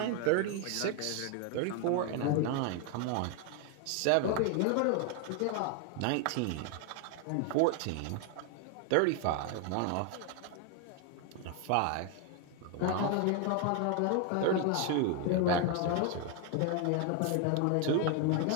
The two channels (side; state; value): both; different; correlation 0.01